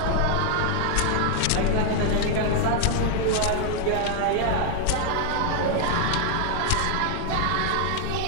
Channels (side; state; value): both; different; correlation 0.00